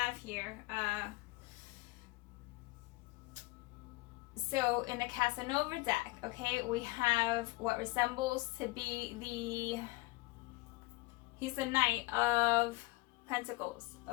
here. So in the Casanova deck, okay, we have what resembles to be he's the Knight of Pentacles,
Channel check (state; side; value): quieter; right; 21.4 dB